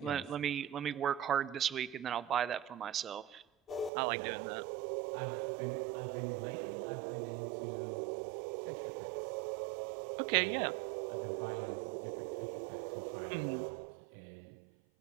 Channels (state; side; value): drops out; left; at 3.9 s